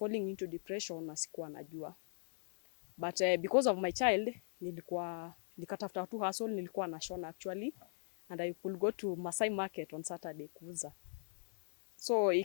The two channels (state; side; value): silent; right; digital silence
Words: into depression na sikuwa najua. But because of my child, nikatafuta tu hustle, nilikuwa nashona actually, and I could go to Masai Market on Saturday kuuza. So